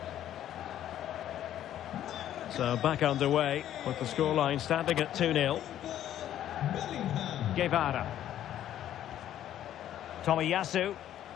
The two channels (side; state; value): right; quieter; 11.6 dB